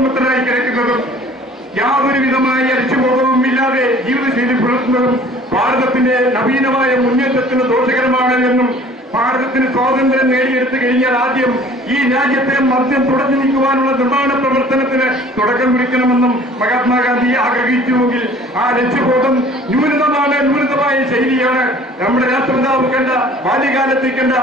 കിടക്കുന്നതും യാതൊരു വിധമായ ലക്ഷ്യബോധവും ഇല്ലാതെ ജീവിതശൈലി പുലർത്തുന്നതും ഭാരതത്തിന്റെ നവീനമായ മുന്നേറ്റത്തിന് ദോഷകരമാണ് എന്നും ഭാരതത്തിന് സ്വാതന്ത്ര്യം നേടിയെടുത്തു കഴിഞ്ഞാൽ ആദ്യം ഈ രാജ്യത്തെ മദ്യം തുടച്ചു നീക്കുവാനുള്ള നിർമ്മാണ പ്രവർത്തനത്തിന് തുടക്കം കുറിക്കണമെന്നും മഹാത്മാഗാന്ധി ആഗ്രഹിച്ചുവെങ്കിൽ ആ ലക്ഷ്യബോധം ന്യൂനമായ ശൈലിയാണ് നമ്മുടെ രാഷ്ട്രപിതാവ് കണ്ട ബാല്യകാലത്തിൽ കണ്ട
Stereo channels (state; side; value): normal; both; correlation 0.50